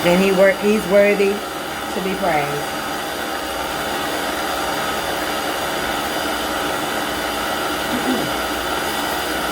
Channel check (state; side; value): identical; both; correlation 1.00